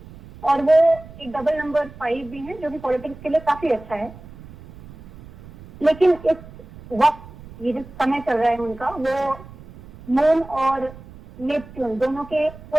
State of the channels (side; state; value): right; noise; rumble, 18 dB below the sound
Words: और वो एक डबल नंबर 5 भी है जो कि पॉलिटिक्स के लिए काफी अच्छा है। लेकिन इस वक्त ये जो समय चल रहा है उनका, वो मून और नेपच्यून दोनों के